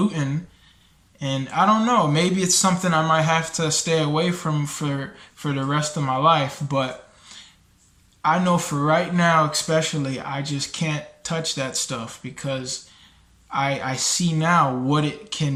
And I don't know, maybe it's something I might have to stay away from for the rest of my life. But I know for right now, especially, I just can't touch that stuff because I see now what it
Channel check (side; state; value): both; identical; correlation 1.00